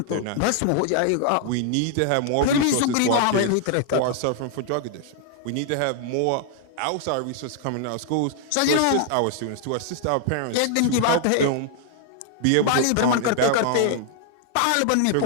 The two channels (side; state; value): both; different; correlation 0.00